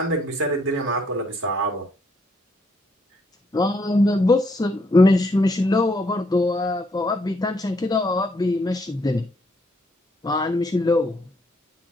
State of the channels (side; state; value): both; normal; correlation 0.71